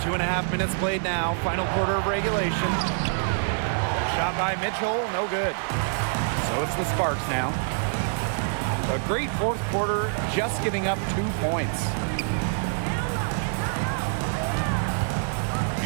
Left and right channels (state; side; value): silent; left; digital silence